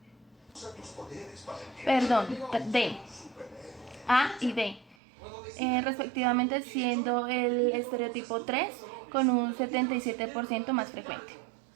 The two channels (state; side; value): drops out; left; at 5.0 s